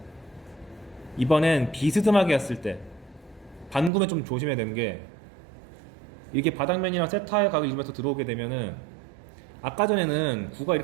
이번엔 비스듬하게 했을 때 반구면 좀 조심해야 되는 게 이게 바닥면이랑 세타의 각을 이루면서 들어오게 되면은 아까 전에는 구가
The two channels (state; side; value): drops out; left; at 3.9 s